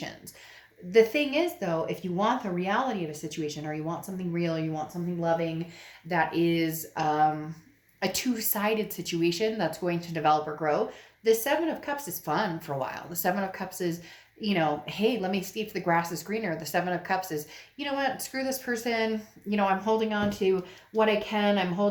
The thing is, though, if you want the reality of a situation, or you want something real, you want something loving that is a two-sided situation that's going to develop or grow, the Seven of Cups is fun for a while. The Seven of Cups is, you know, hey, let me see if the grass is greener. The Seven of Cups is, you know what, screw this person. You know, I'm holding on to what I can. I'm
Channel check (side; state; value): both; identical; correlation 1.00